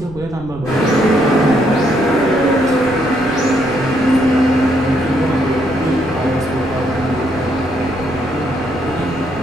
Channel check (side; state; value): right; noise; rumble, 17 dB below the sound